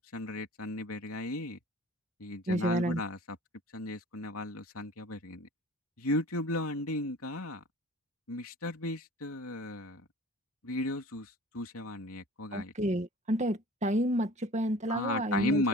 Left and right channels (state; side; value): normal; both; correlation 0.44